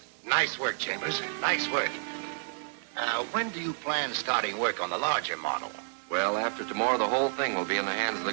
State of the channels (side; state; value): left; silent; 58 dB below the other